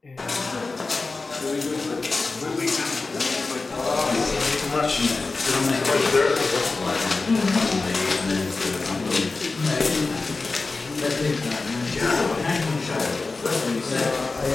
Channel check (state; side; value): quieter; right; 3.8 dB